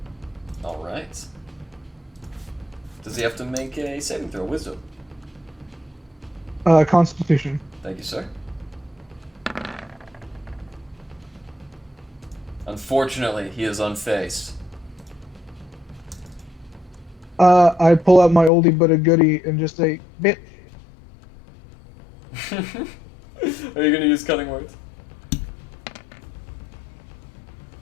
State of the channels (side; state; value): right; drops out; at 18.5 s